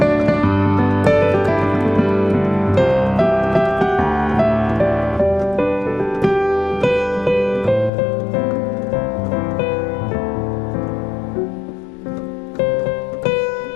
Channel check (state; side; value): drops out; right; at 7.9 s